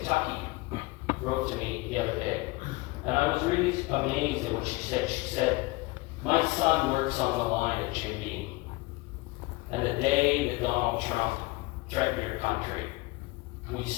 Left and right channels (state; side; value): quieter; right; 22.4 dB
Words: wrote to me the other day. And I was really amazed at what she said. She said, my son works on the line at Jim Beam. And the day that Donald Trump threatened your country, we